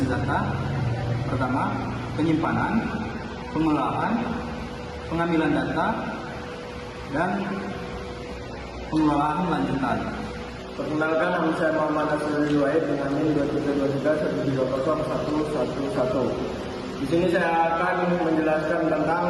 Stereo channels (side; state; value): both; identical; correlation 1.00